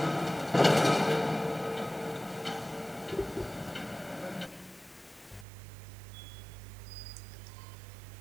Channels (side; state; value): left; drops out; at 5.5 s